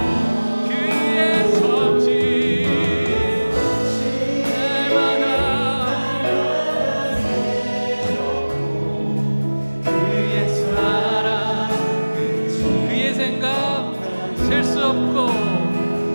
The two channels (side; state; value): both; inverted; correlation -1.00